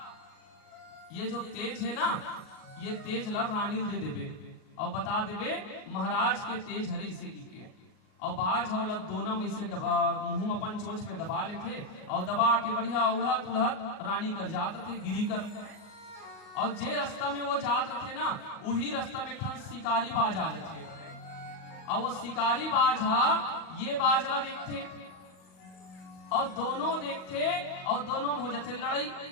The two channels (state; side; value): late; right; 38 ms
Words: ये जो तेज है ना ये तेज ला रानी दे देबे और बता देबे महाराज के तेज हरी से की। और बाज वाला दोनों में से मुंह अपन चोंच पे दबा लेते और दबा के बढ़िया उड़हत उड़हत रानी कर जात थे गिरी कर। और जे रास्ता में वो जात रहे ना, वही रास्ता में एक शिकारी बाज आ जाते और वो शिकारी बाज हा ये बाज ला देखते और दोनों देखते और दोनों में हो जाते लड़ाई।